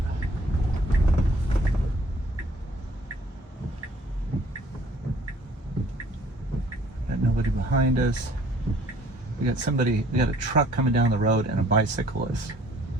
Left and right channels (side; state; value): both; normal; correlation 0.58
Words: Got nobody behind us. We got a truck coming down the road and a bicyclist.